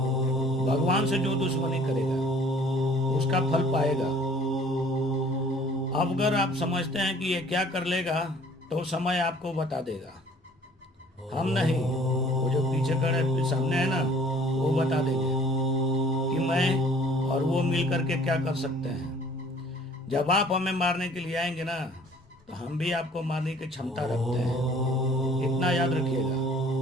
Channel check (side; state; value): both; normal; correlation 0.53